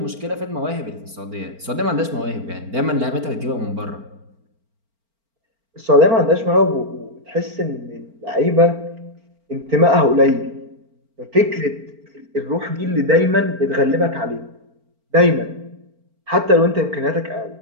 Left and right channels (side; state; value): left; late; 4.4 ms